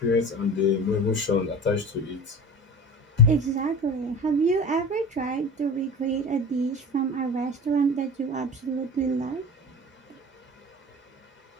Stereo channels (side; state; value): both; normal; correlation 0.35